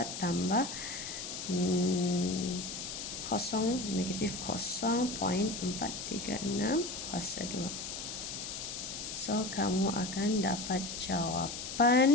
tambah 0 negatif 0.436 kuasa 2. So, kamu akan dapat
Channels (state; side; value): noise; left; hiss, 6 dB below the sound